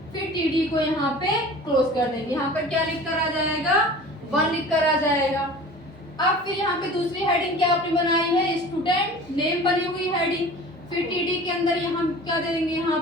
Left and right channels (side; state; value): both; normal; correlation 0.41